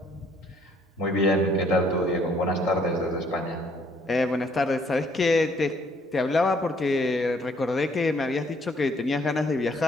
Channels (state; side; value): normal; both; correlation 0.64